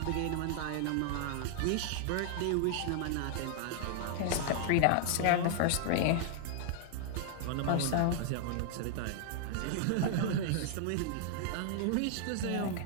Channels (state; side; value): different; both; correlation -0.01